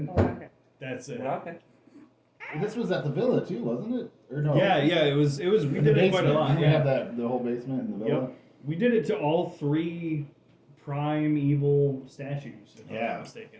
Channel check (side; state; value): both; identical; correlation 1.00